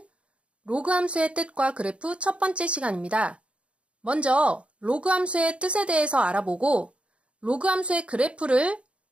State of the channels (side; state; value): left; late; 0.060 ms